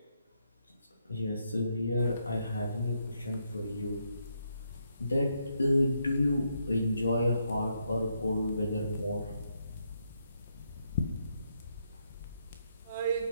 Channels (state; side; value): inverted; both; correlation -0.78